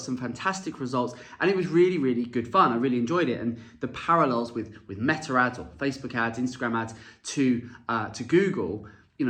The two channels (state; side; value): identical; both; correlation 1.00